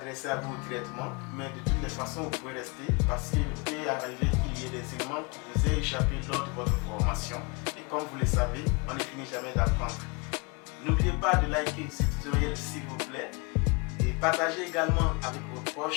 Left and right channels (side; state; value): right; quieter; 29.6 dB